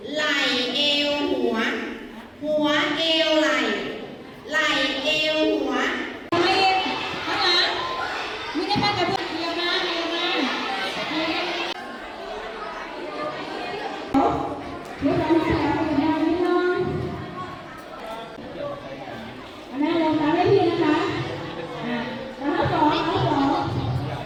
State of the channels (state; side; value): identical; both; correlation 1.00